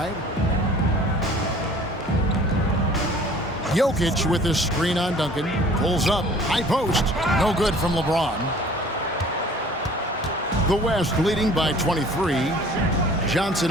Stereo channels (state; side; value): normal; both; correlation 0.50